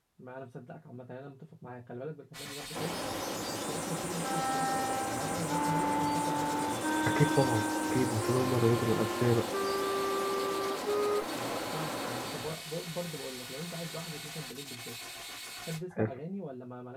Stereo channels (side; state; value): both; identical; correlation 1.00